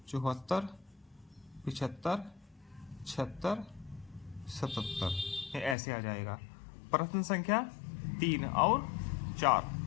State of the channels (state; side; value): drops out; right; at 5.8 s